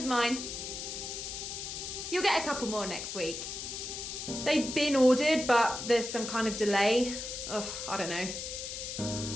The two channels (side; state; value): left; noise; hiss, 6 dB below the sound